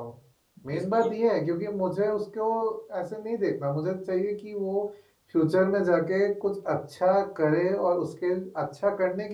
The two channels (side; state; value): both; identical; correlation 1.00